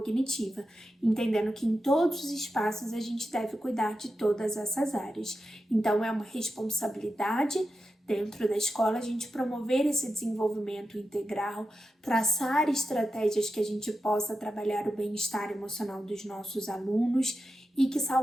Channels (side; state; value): both; normal; correlation 0.90